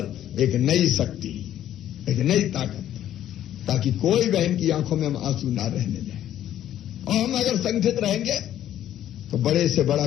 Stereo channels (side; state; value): right; quieter; 11.7 dB